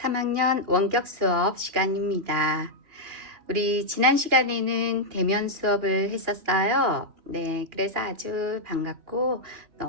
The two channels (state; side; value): late; left; 2.8 ms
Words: 원격 수업 시간입니다. 우리 지난 시간에는 대면 수업을 했었어요. 네, 그래서 아주 반갑고